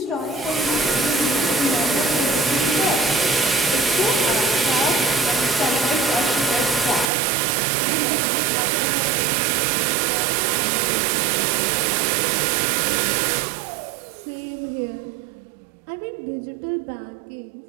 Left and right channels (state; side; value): drops out; left; at 7.1 s